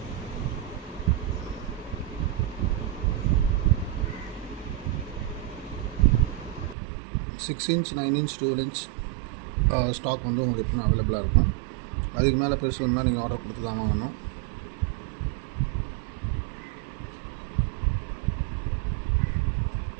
Six inch, 9 inch, 12 inch stock உங்களுக்கு எப்பவுமே அவைலபிளாக இருக்கும். அதுக்கு மேலே பெருசு வேணும்னா நீங்கள் ஆர்டர் கொடுத்து தான் வாங்கணும்.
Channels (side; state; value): left; drops out; at 6.8 s